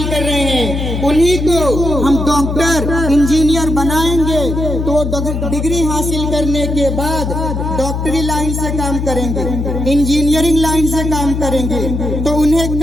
کر رہے ہیں، انہی کو ہم ڈاکٹر انجینئر بنائیں گے تو وہ ڈگری حاصل کرنے کے بعد ڈاکٹری لائن سے کام کریں گے، انجینئرنگ لائن سے کام کریں گے، تو انہیں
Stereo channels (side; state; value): left; noise; hum, 2 dB below the sound